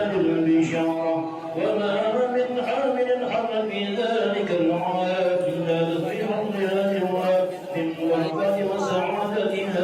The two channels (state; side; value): identical; both; correlation 1.00